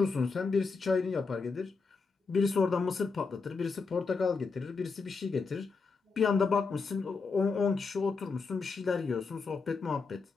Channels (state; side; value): quieter; right; 4.6 dB